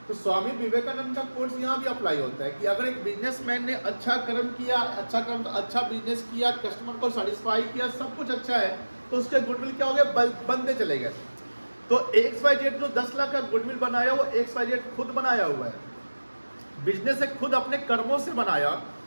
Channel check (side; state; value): both; inverted; correlation -1.00